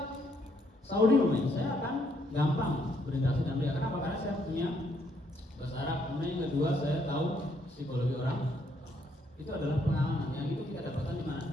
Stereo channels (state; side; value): normal; both; correlation 0.71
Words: Saudi saya akan gampang berinteraksi dengan mereka. Kenapa? Karena saya punya bahasa Arab. Kemudian yang kedua, saya tahu psikologi orang. Itu adalah pengalaman yang itu kita dapatkan di mana?